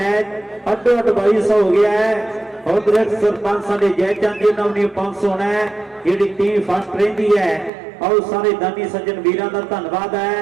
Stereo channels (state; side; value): drops out; left; at 7.7 s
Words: ਅੱਡੋ ਅੱਡ 2200 ਹੋ ਗਿਆ ਹੈ। ਉਧਰ ਸਰਪੰਚ ਸਾਡੇ ਜੈ ਚੰਦ ਜੀ ਨਾਲ ਵੀ 500 ਹੋਣਾ ਹੈ, ਜਿਹੜੀ ਟੀਮ ਫਸਟ ਰਹਿੰਦੀ ਹੈ। ਆਓ ਸਾਰੇ ਦਾਨੀ ਸੱਜਣ ਵੀਰਾਂ ਦਾ ਧੰਨਵਾਦ